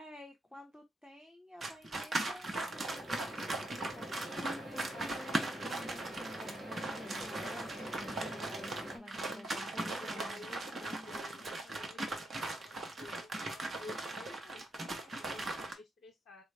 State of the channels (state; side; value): normal; both; correlation 0.80